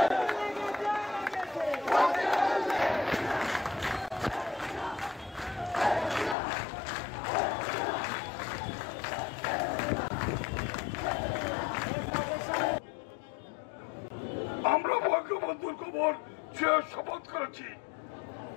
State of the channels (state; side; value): drops out; right; at 6.4 s